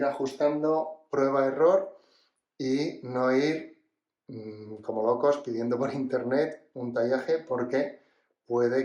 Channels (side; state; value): both; identical; correlation 1.00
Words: ajustando prueba-error y no ir como locos pidiendo por internet un tallaje porque puede